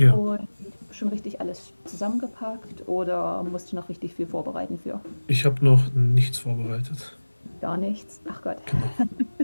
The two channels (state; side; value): inverted; both; correlation -1.00